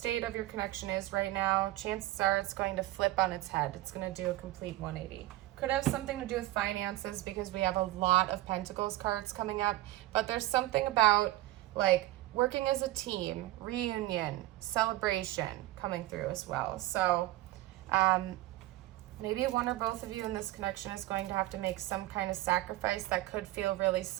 of your connection is right now, chances are it's going to flip on its head. It's going to do a complete 180. Could have something to do with finances because we have a lot of Pentacles cards coming up, but there's something about like working as a team, reunion, celebration coming through as well. So, maybe one or both of you in this connection is going to have to make some kind of sacrifice that could feel really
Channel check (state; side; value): quieter; left; 16.9 dB